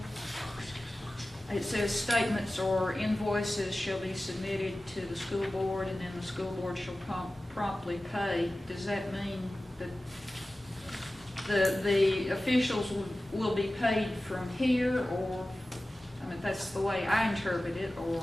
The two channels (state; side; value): normal; both; correlation 0.96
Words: it says statements or invoices shall be submitted to the school board, and then the school board shall promptly pay. Does that mean that the officials will be paid from here, or, I mean, that's the way I interpret it,